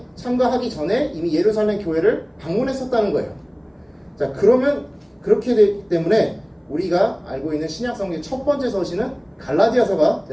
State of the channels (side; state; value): both; identical; correlation 1.00